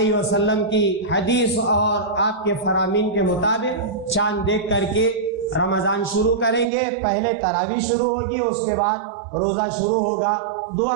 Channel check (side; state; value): left; drops out; at 6.7 s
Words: وسلم کی حدیث اور آپ کے فرامین کے مطابق چاند دیکھ کر کے رمضان شروع کریں گے. پہلے تراویح شروع ہوگی، اس کے بعد روزہ شروع ہوگا. دعا